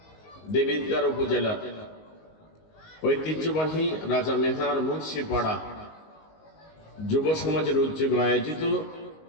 দেবিদ্বার উপজেলা ঐতিহ্যবাহী রাজা মেহার মুন্সিপাড়া যুব সমাজের উদ্যোগে আয়োজিত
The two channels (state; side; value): late; right; 19 ms